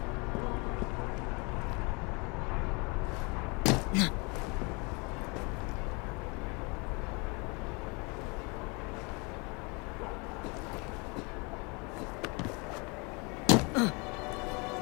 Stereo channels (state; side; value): quieter; right; 30.0 dB